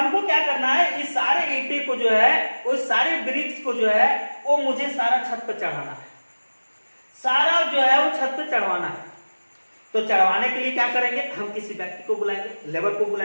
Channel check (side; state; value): both; inverted; correlation -1.00